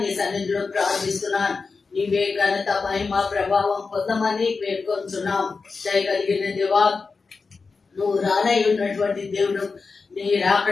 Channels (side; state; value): right; quieter; 4.5 dB